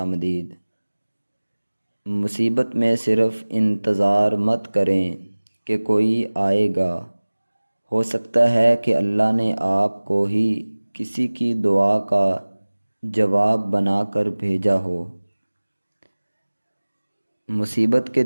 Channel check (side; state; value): both; inverted; correlation -1.00